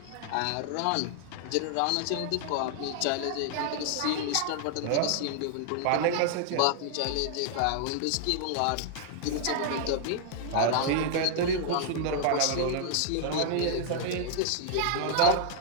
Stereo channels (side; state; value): both; different; correlation -0.01